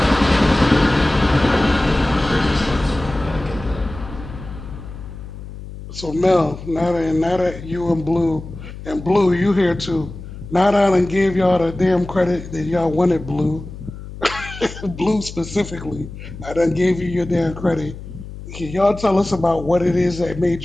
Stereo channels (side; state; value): left; noise; hum, 12 dB below the sound